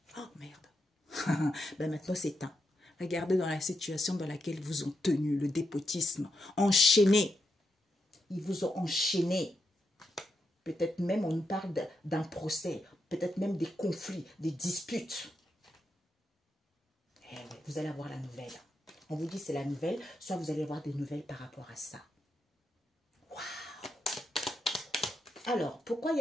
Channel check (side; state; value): both; normal; correlation 0.84